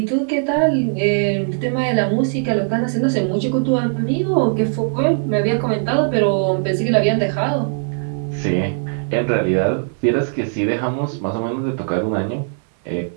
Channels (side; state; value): left; silent; digital silence